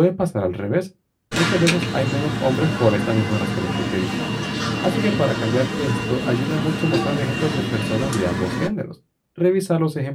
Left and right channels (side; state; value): both; identical; correlation 1.00